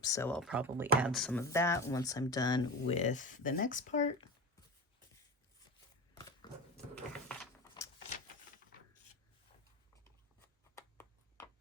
so I'll probably add some of that once I'm done with the next part.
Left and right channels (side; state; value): both; normal; correlation 0.27